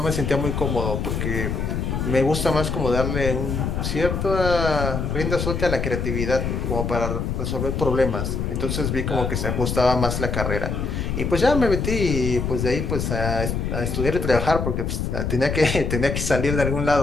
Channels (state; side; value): noise; left; rumble, 1 dB below the sound